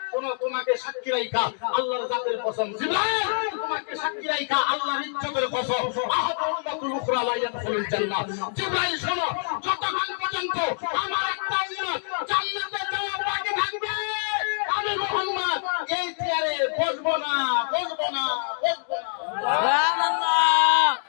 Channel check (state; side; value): silent; right; 61 dB below the other